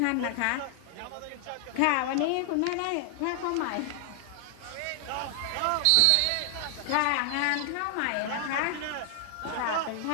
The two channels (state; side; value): different; both; correlation 0.00